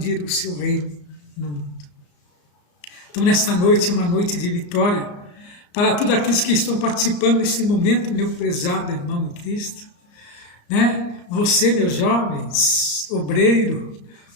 o seu reino no mundo. Então, nesta noite, é uma noite de vitória para todos aqueles que estão participando nesse momento, meu prezado irmão em Cristo. Você, meus jovens, obreiro,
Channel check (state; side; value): late; right; 34 ms